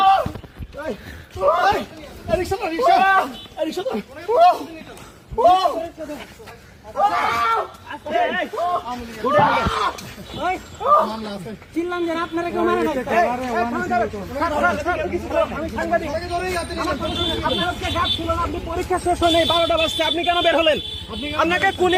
চিল্লাম যে আপনারা কেউ মারে না। আপনি পরীক্ষা শেষ হয় নাই, 12টা বাজছে, আপনি কেন বের হলেন? আপনাকে কোন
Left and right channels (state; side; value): identical; both; correlation 1.00